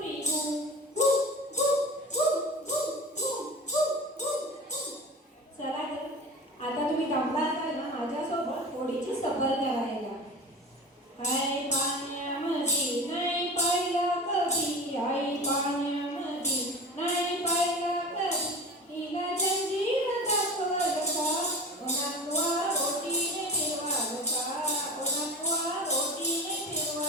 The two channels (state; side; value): normal; both; correlation 0.34